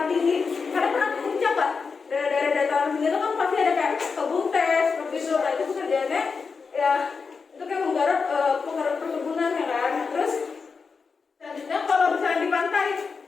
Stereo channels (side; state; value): right; quieter; 5.1 dB